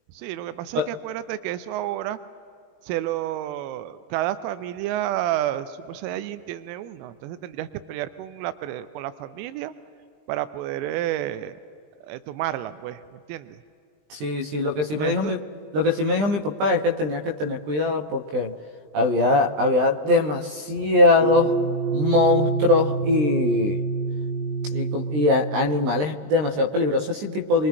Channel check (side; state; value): left; late; 20 ms